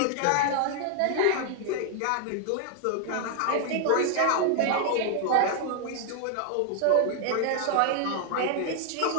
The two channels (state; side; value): different; both; correlation 0.00